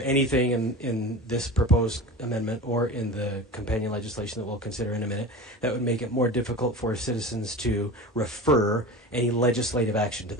anything in this proposed amendment or in the companion legislation that we'll consider in a minute that would make it more difficult for citizens to refer any legislative action to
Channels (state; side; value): normal; both; correlation 0.32